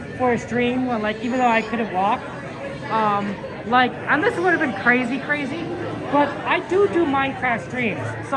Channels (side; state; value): both; identical; correlation 1.00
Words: for a stream, when, like, even though I couldn't walk. Like, and this would have been crazy, but I do Minecraft streams, so